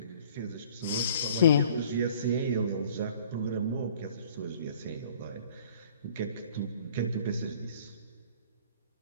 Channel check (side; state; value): both; inverted; correlation -0.53